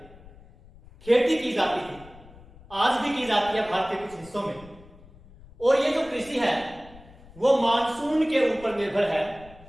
खेती की जाती थी। आज भी की जाती है भारत के कुछ हिस्सों में। और ये जो कृषि है वो मानसून के ऊपर निर्भर है।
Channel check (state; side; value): noise; left; rumble, 22 dB below the sound